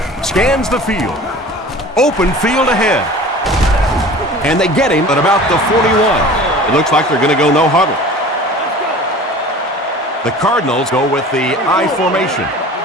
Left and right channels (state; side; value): normal; both; correlation 0.41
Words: Scans the field. Open field ahead. And they get him at about the 41. It looks like they're going to go no huddle. The Cardinals go with the I formation.